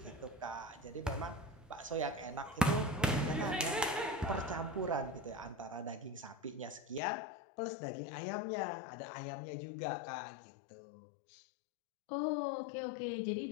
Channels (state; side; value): drops out; right; at 7.0 s